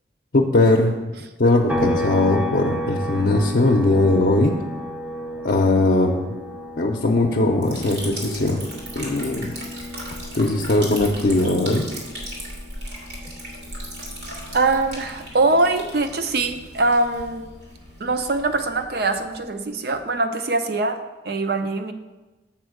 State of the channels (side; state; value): both; normal; correlation 0.30